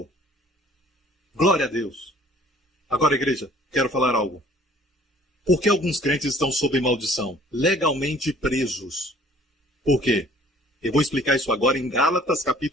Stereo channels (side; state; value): both; normal; correlation 0.55